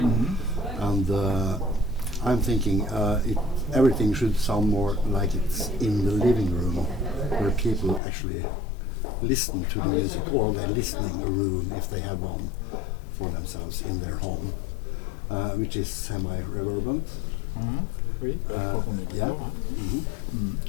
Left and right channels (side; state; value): right; drops out; at 8.0 s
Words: And I'm thinking everything should sound more like it's in the living room, where people actually listen to the music, or the listening room if they have one for themselves in their home, which is semi-reverberant. Oui, je crois qu'on est d'accord.